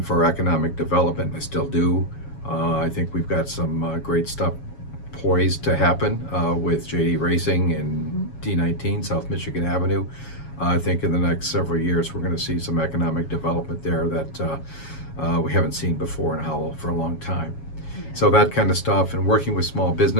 for economic development, and I still do. I think we've got some great stuff poised to happen with JD Racing and D19, South Michigan Avenue. I think in the next several years we're going to see some economic development there that we haven't seen before in Howell for a long time. So that kind of stuff, and working with small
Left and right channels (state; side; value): late; right; 7.2 ms